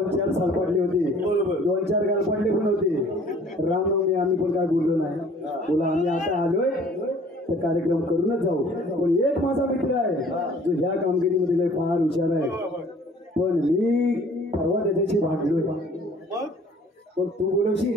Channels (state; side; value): normal; both; correlation 0.53